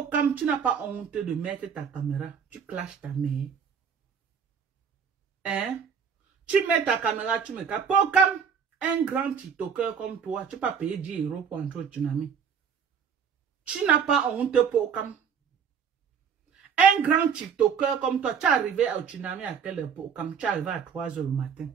tu n'as pas honte de mettre ta caméra. Tu clashes ta mère. Hein? Tu mets ta caméra, tu me casses. Pokam, un grand TikToker comme toi, tu peux pas payer 10 € pour entrer au tsunami. Tu n'as pas honte, Pokam. Un grand TikToker comme toi, tu es arrivé au tsunami à quelle époque? Comme tu es arrivé à 3 h le matin.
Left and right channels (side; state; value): left; quieter; 7.0 dB